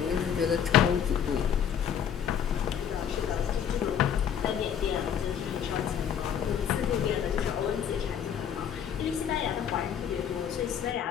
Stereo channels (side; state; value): right; quieter; 8.5 dB